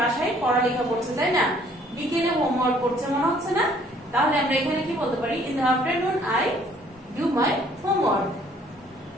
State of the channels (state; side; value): normal; both; correlation 0.60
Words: পড়ালেখা করছে, তাই না? বিকেলে হোমওয়ার্ক করছে মনে হচ্ছে না? তাহলে আমরা এখানে কি বলতে পারি? In the afternoon I do my homework.